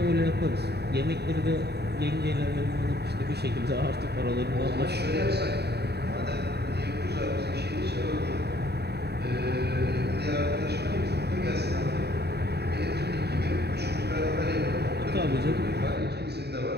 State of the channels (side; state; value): left; late; 0.48 ms